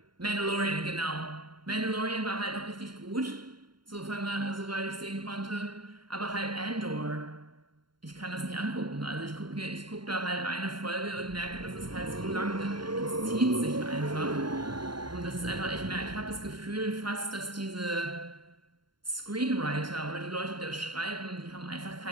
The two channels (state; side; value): late; left; 0.72 ms